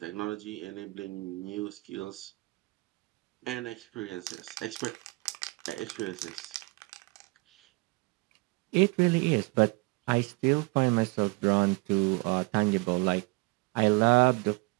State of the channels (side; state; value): left; quieter; 26.0 dB